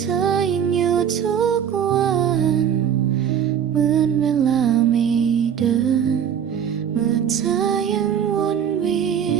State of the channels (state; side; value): quieter; left; 8.5 dB